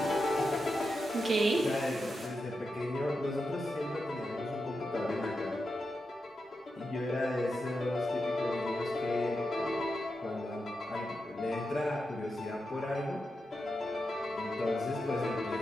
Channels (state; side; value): normal; both; correlation 0.88